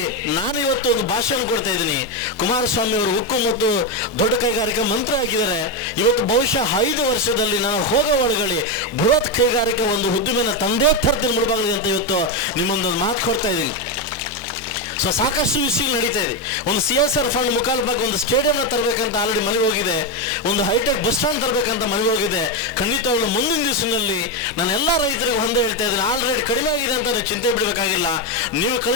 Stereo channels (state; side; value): normal; both; correlation 0.08